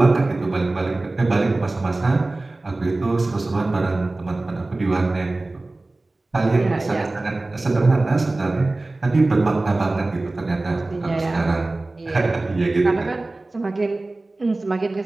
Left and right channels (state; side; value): quieter; left; 3.0 dB